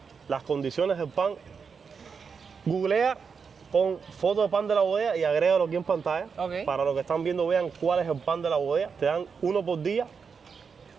las condiciones del pan. Googlea, pon foto de pan de la bodega y agrégalo aquí en pantalla. Para los que están viendo vean cuál es el pan de la bodega. Te dan uno por día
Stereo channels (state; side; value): quieter; left; 5.8 dB